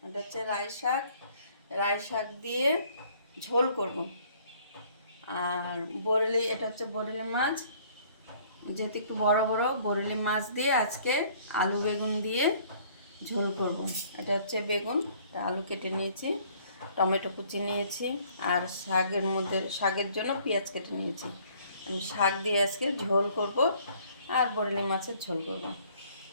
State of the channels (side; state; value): both; inverted; correlation -0.59